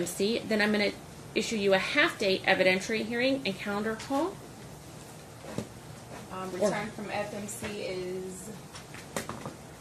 then I'm going to issue you a half-day evidentiary hearing and calendar call. Return from FMC is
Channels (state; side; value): identical; both; correlation 1.00